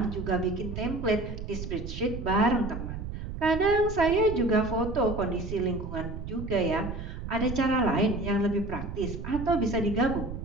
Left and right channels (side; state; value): right; noise; rumble, 7 dB below the sound